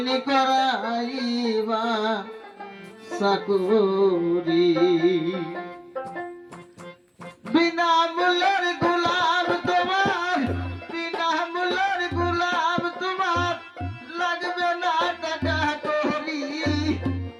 নি করাইবা চাকরি বিনা মূল্যের গোলাম তোমার বিনা মূল্যের গোলাম তোমার লাগবে না টাকা করি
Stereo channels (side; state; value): both; identical; correlation 1.00